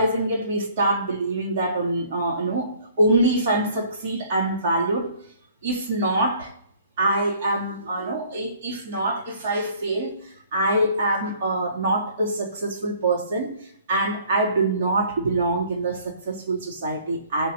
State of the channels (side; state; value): both; inverted; correlation -0.56